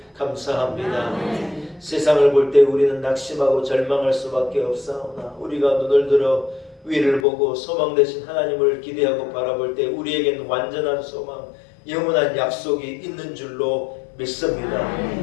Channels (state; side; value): drops out; right; at 7.2 s